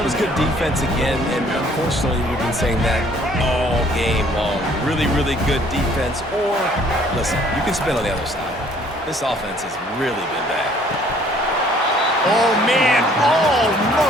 was good defense again, and unfortunately we've been saying that all game long. Really, really good defense, or, listen, you can spin on the other side. This offense has really been bad. Oh, man,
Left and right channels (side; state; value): both; normal; correlation 0.59